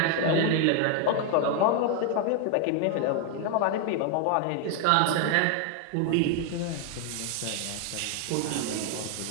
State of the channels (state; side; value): different; both; correlation 0.00